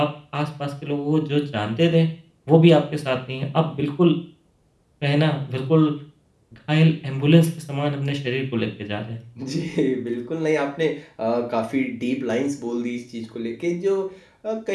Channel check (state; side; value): identical; both; correlation 1.00